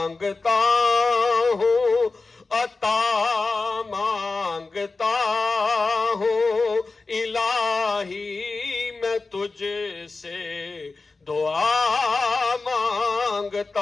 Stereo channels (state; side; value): quieter; right; 3.8 dB